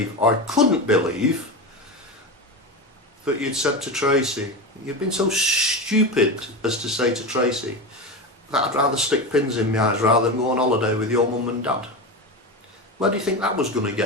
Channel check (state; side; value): normal; both; correlation 0.21